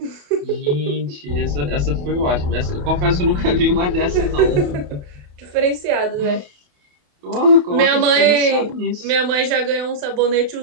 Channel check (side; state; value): left; late; 28 ms